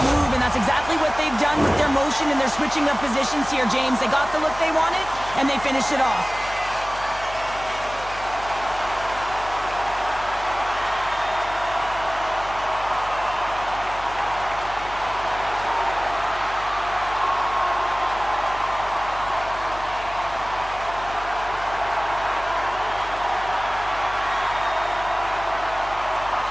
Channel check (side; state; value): left; noise; hum, 15 dB below the sound